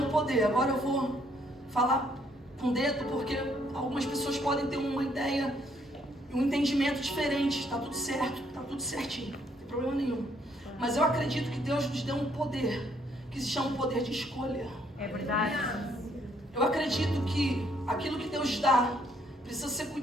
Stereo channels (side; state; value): both; normal; correlation 0.69